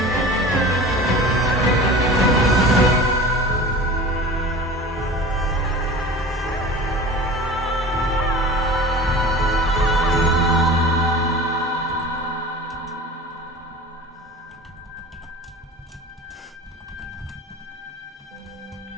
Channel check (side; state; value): both; normal; correlation 0.36